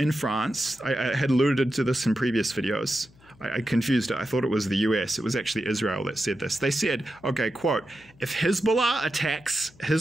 France. I had alluded to this in previous videos. I confused it. I thought it was the US. It was actually Israel that said this. They said, okay, quote, if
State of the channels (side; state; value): left; noise; hum, 27 dB below the sound